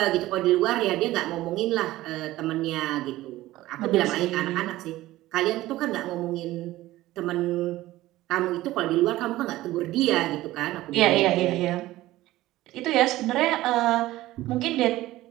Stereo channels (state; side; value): quieter; left; 16.5 dB